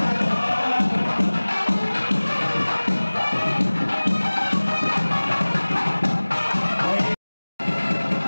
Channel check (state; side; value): inverted; both; correlation -1.00